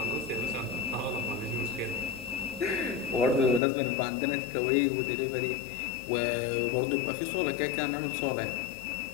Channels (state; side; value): drops out; right; at 3.6 s